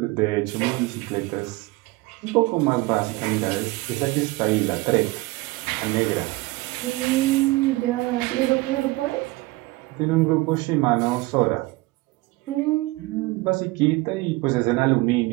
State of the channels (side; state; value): left; quieter; 21.5 dB